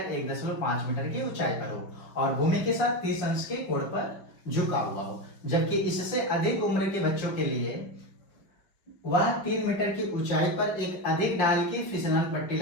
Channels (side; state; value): right; late; 5.3 ms